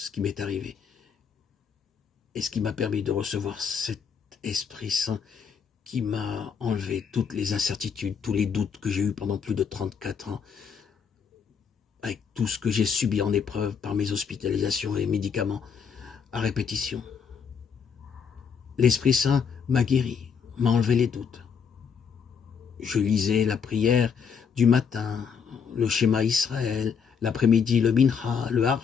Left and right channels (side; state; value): right; quieter; 6.6 dB